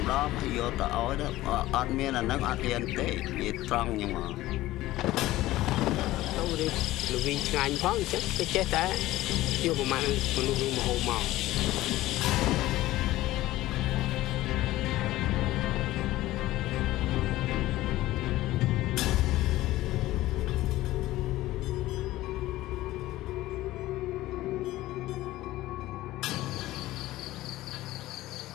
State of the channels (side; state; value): right; quieter; 16.5 dB